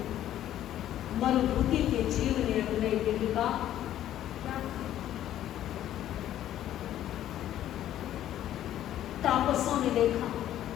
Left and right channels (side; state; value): right; quieter; 12.1 dB